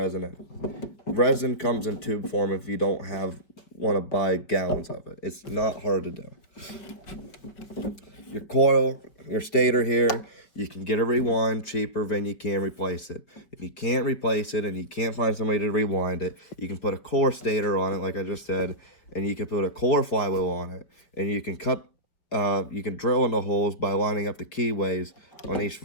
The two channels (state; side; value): late; right; 5.0 ms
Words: in. Resin comes in tube form if you don't want to buy gallons of it. It's not hard to do. Your coil, your stator here, you can get a rewind cheaper than you can replace it. If you can't replace it and you can't find somebody to rewind it, you can put a core stator on it, like I just said, and you can put a core flywheel on it, and you can you can drill into holes by lining up the keyways on each